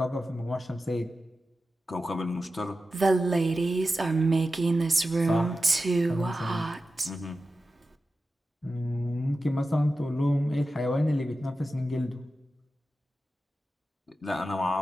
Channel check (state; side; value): normal; both; correlation 0.92